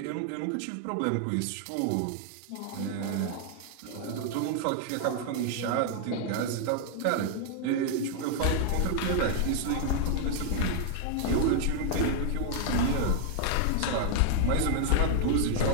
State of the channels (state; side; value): different; both; correlation 0.00